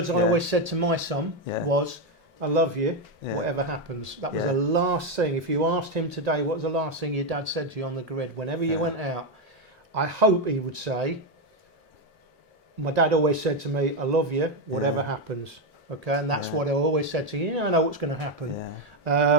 I always said to my son was, "I love you, whatever happens." That was the last thing. If you asked him today, what was the last thing your dad said to you on the grid whenever you went out? I hope he would say, my dad always said to me, "I love you, whatever happens." Okay, and that's what I always said to you. You never know what's going to happen.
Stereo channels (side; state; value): both; normal; correlation 0.07